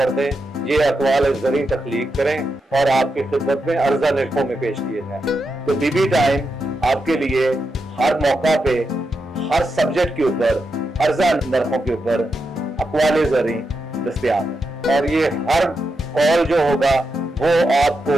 दें, ये अकवाल जरी तख्लीक करें और आपकी खिदमत में अर्जा निर्खों में पेश किए जाए। तो बीबी टाइम आपके लिए हर मौका पे हर सब्जेक्ट के ऊपर अर्जा नरखों के ऊपर अकवाले जरी दस्तयाब है, और ये हर कॉल जो होगा वो आपको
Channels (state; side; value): normal; both; correlation 0.86